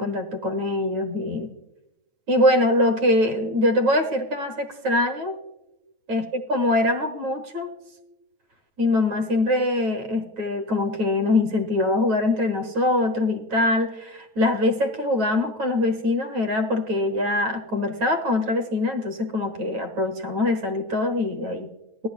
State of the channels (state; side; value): late; left; 9.2 ms